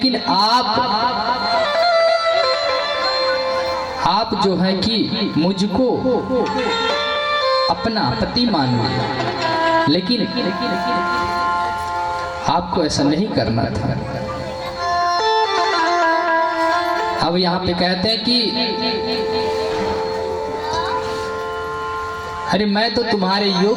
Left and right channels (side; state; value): both; identical; correlation 1.00